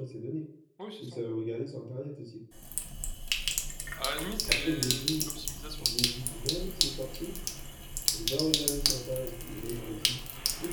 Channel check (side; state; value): both; identical; correlation 1.00